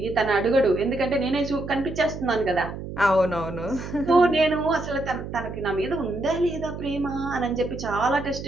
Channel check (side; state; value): right; noise; hum, 9 dB below the sound